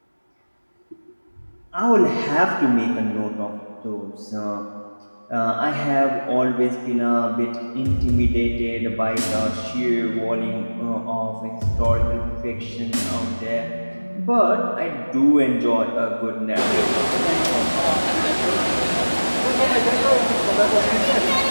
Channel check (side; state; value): both; inverted; correlation -1.00